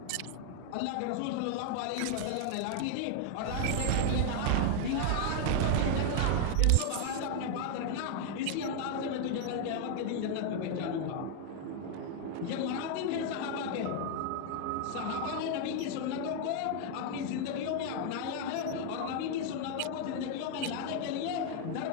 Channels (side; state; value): both; different; correlation 0.00